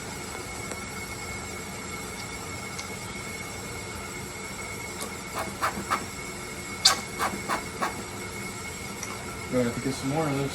I have to get some more of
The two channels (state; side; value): identical; both; correlation 1.00